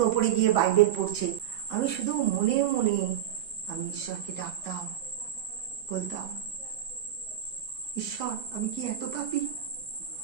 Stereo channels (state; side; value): quieter; left; 10.7 dB